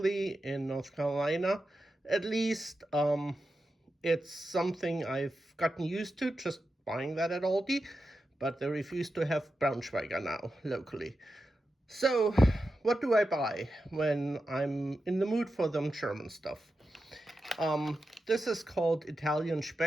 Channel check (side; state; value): both; normal; correlation 0.90